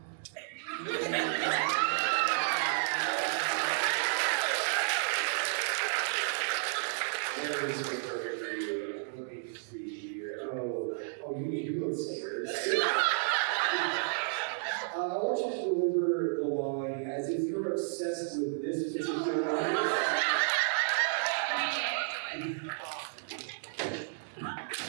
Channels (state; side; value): silent; left; digital silence